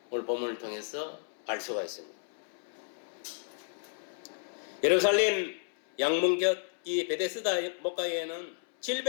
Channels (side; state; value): right; silent; 56 dB below the other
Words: 오늘 본문을 통해서 알 수가 있습니다. 예루살렘 양문곁 이 베데스다 목가에는